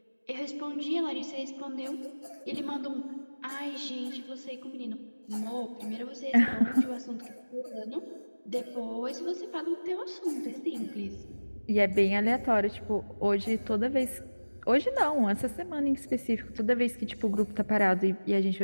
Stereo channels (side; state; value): both; inverted; correlation -1.00